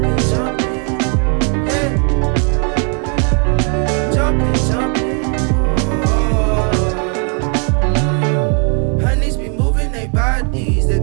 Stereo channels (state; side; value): quieter; left; 39.1 dB